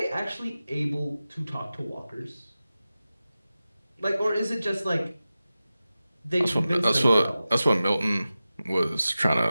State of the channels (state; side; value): inverted; both; correlation -0.95